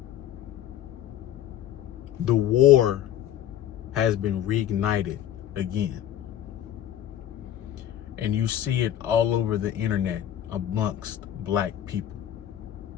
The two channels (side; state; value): right; quieter; 11.3 dB